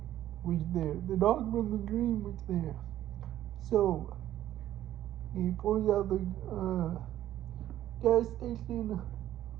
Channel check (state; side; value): quieter; left; 12.7 dB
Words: was there. The dog from the dream was there. So, he pulls out the gas station,